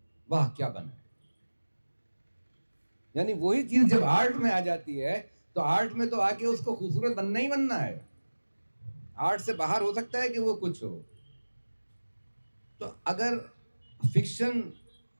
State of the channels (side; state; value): both; inverted; correlation -1.00